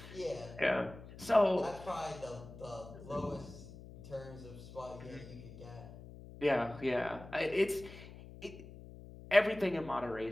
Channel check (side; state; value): left; noise; hum, 15 dB below the sound